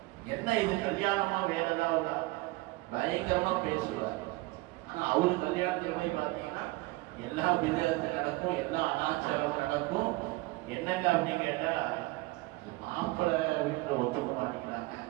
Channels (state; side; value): quieter; left; 21.9 dB